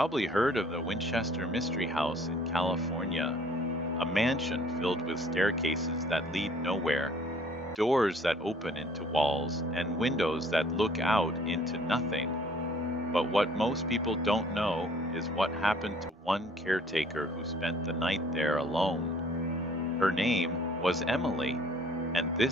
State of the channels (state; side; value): normal; both; correlation 0.56